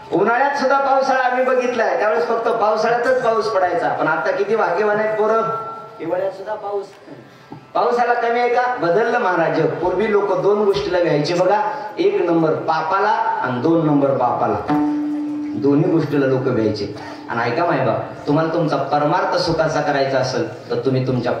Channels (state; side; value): identical; both; correlation 1.00